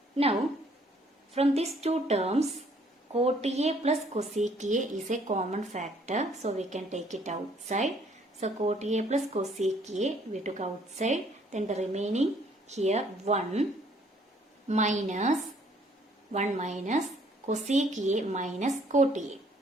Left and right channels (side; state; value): both; normal; correlation 0.63